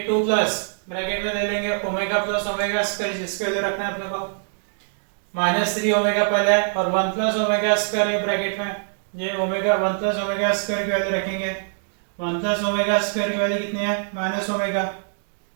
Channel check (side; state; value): left; silent; digital silence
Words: 2 प्लस ब्रैकेट में ले लेंगे ओमेगा प्लस ओमेगा स्क्वायर जिसके वैल्यू रखना है अपने को माइनस 3 ओमेगा पहले है और 1 प्लस ओमेगा स्क्वायर है ब्रैकेट में, ये ओमेगा 1 प्लस ओमेगा स्क्वायर की वैल्यू रखेंगे। 1 प्लस ओमेगा स्क्वायर की वैल्यू कितनी है minus omega,